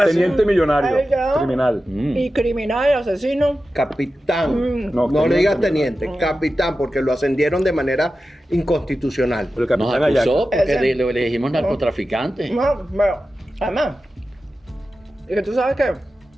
teniente millonario, Ay, ya. criminal. Y criminal, asesino. Capitán. Mm. No, No, le digas teniente. teniente, capitán, porque lo ascendieron de manera inconstitucional. El Nos capitán acusó Ayaco. porque Ese. le dijimos narcotraficante. No, bueno, además, y que tú sabes que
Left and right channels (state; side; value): normal; both; correlation 0.93